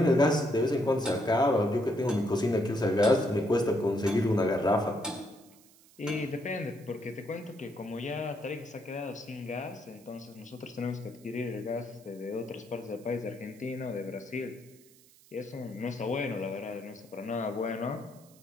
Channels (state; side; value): noise; right; hiss, 26 dB below the sound